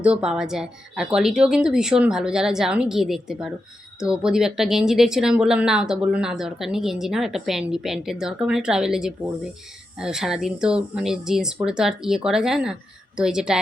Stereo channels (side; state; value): both; normal; correlation 0.88